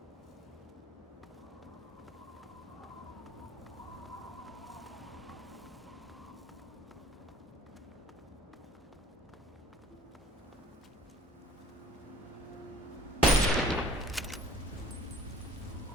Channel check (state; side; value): normal; both; correlation 0.53